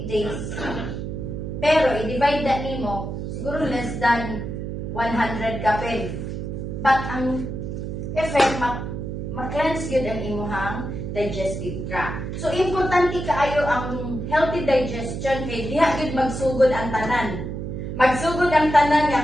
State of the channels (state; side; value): noise; right; hum, 5 dB below the sound